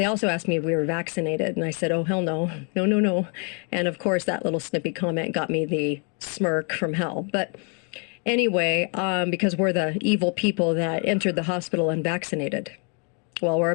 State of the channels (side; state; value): right; quieter; 38.6 dB